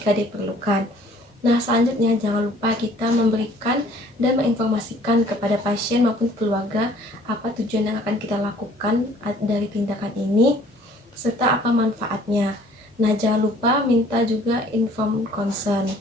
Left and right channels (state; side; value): normal; both; correlation 0.56